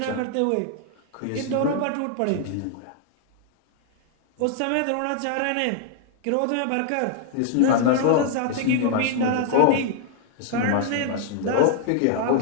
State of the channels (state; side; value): different; both; correlation 0.00